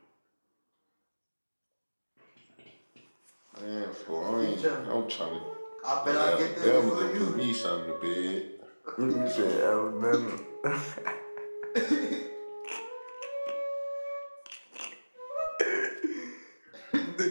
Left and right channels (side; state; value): both; inverted; correlation -1.00